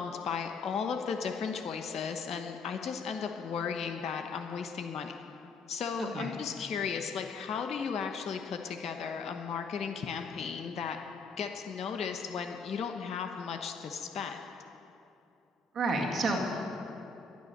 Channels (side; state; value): right; quieter; 3.9 dB